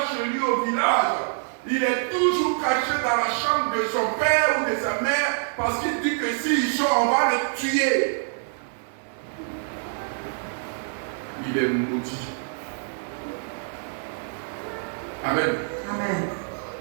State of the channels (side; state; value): left; silent; 61 dB below the other